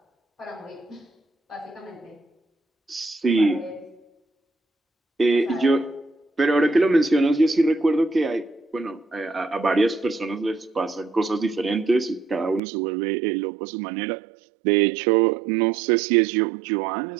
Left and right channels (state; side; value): drops out; left; at 12.6 s